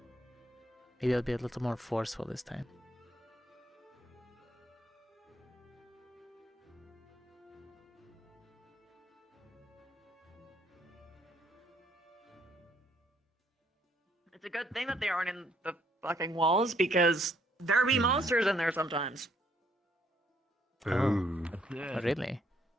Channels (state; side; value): normal; both; correlation 0.68